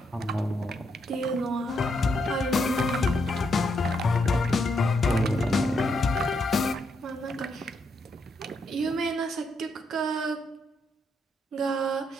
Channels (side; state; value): both; normal; correlation 0.78